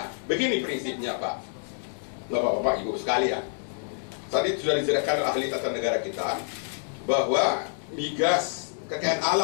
Begini prinsipnya, Pak, Bapak-bapak, Ibu sekalian. Tadi sudah dijelaskan oleh ahli tata negara kita bahwa migas kekayaan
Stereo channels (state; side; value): silent; right; digital silence